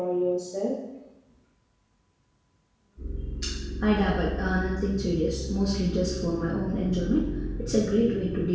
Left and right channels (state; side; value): identical; both; correlation 1.00